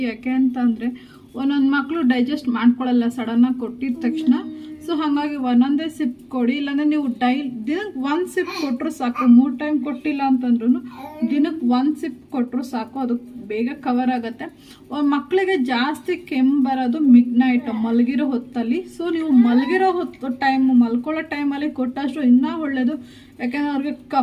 ಯಾಕೆ ಅಂತಂದರೆ ಒಂದೊಂದು ಮಕ್ಕಳು ಡೈಜೆಸ್ಟ್ ಮಾಡ್ಕೊಳ್ಳಲ್ಲ ಸಡನ್ನಾಗಿ ಕೊಟ್ಟಿದ ತಕ್ಷಣ. ಸೊ ಹಾಗಾಗಿ ಒಂದೊಂದೇ ಸಿಪ್ ಕೊಡಿ, ಇಲ್ಲಾಂದರೆ ನೀವು ದಿನಕ್ಕೆ 1 ಸಿಪ್ ಕೊಟ್ಟರು ಸಾಕು. 3 ಟೈಮ್ ಕೊಟ್ಟಿಲ್ಲ ಅಂತಂದ್ರೂ ದಿನಕ್ಕೆ 1 ಸಿಪ್ ಕೊಟ್ಟರು ಸಾಕು, ಅದು ಬೇಗ ಕವರ್ ಆಗುತ್ತೆ. ಮಕ್ಕಳಿಗೆ ಜಾಸ್ತಿ ಕೆಮ್ಮು ಬರೋದು ಮಿಡ್ ನೈಟ್ ಮಲಗಿರೋ ಹೊತ್ತಲ್ಲಿ. ಸೊ ನೀವು ಮಲಗಿರೋ ಮಲ್ಕೊಳ್ಳೋ ಟೈಮಲ್ಲಿ ಕೊಟ್ಟಷ್ಟು ಇನ್ನೂ ಒಳ್ಳೆಯದು. ಯಾಕೆಂದರೆ ಅವ್ರಿಗೆ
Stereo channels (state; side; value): identical; both; correlation 1.00